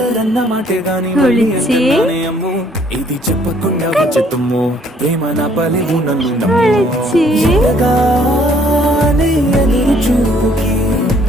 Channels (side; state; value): both; normal; correlation 0.63